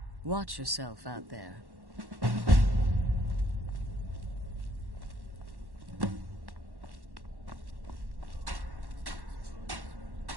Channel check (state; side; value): late; left; 1.1 ms